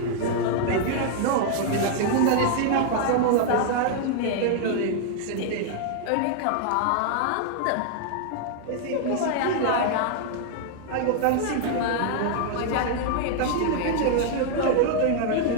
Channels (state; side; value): different; both; correlation 0.00